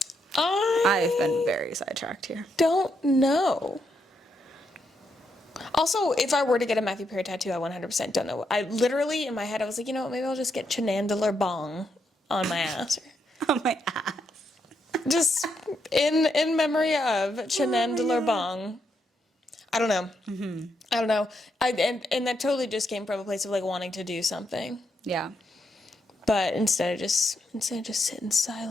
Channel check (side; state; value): both; normal; correlation 0.80